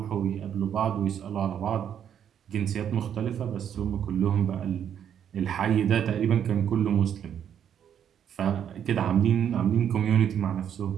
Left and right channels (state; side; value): quieter; left; 9.0 dB